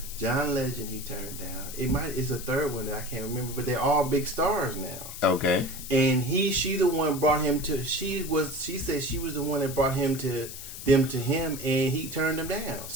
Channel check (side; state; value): left; noise; hiss, 10 dB below the sound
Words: John Legend. He turned down. It's a third one that I can't remember, but they're all big stars now. Okay. And she the one brought him to. She said she was the one that brought him to him, and he turned him down.